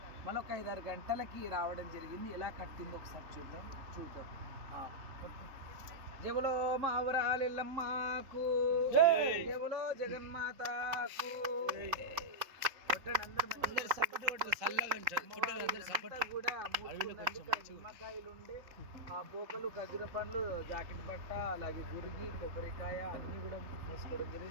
మళ్ళీ ఒక 5-6 గంటలకి రావడం జరిగింది. ఎలా కట్టిందో ఒకసారి చూద్దాం. జబులో మావరాలెల్లమ్మకు, జబులో జగన్మాతకు. నిమ్మకాయలు ఉండే ఆ పోకలు ఖర్జూర పండ్లు జాకెట్ బట్ట అలాగే గురిగి కొబ్బరికాయ అన్ని కూడా మూసుకోవడం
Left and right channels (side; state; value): left; late; 3.6 ms